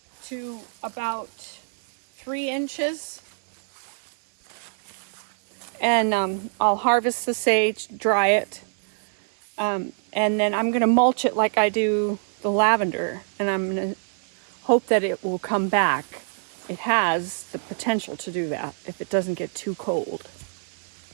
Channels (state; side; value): silent; left; 62 dB below the other